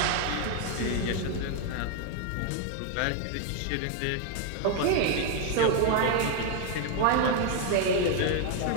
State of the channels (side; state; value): both; different; correlation 0.01